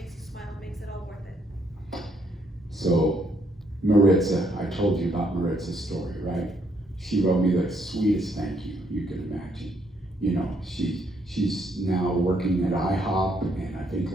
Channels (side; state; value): both; normal; correlation 0.71